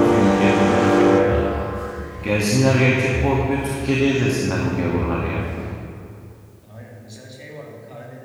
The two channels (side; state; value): both; identical; correlation 1.00